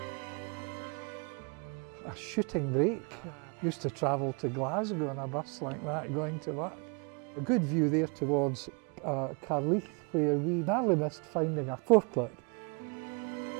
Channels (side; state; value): left; quieter; 33.9 dB